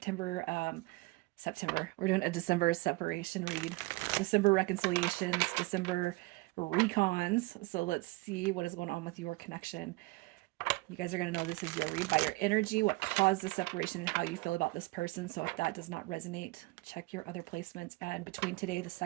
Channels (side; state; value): left; quieter; 23.3 dB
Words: We're doing a December separation read. December reconciliations, December recons. So let's see what is going on with your connection. You guys are going to know this is your read by your energy, what caused the separation, and how you feel about this person. So if that does not resonate, check your other placements. And between today, the